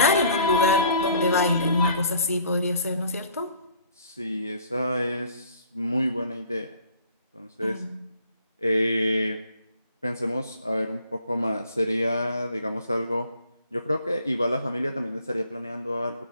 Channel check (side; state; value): both; inverted; correlation -0.54